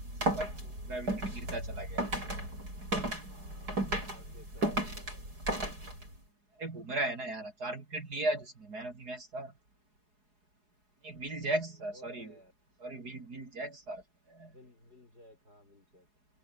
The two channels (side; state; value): left; late; 4.8 ms